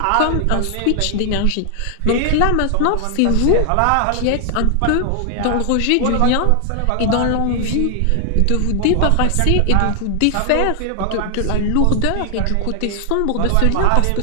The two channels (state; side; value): different; both; correlation 0.00